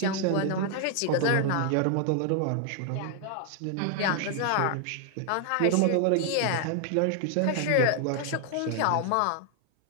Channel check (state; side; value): different; both; correlation 0.00